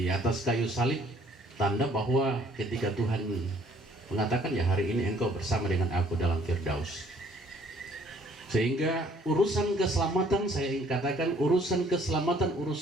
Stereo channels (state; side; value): normal; both; correlation 0.61